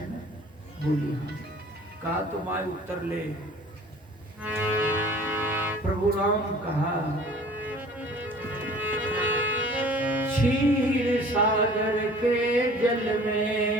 ना। बोली हाँ। कहा तो माय उत्तर ले। प्रभु राम कहा क्षीर सागर के जल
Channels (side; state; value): both; normal; correlation 0.48